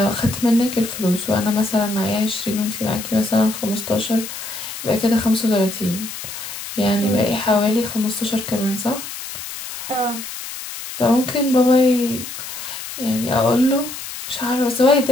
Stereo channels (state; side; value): noise; left; hiss, 9 dB below the sound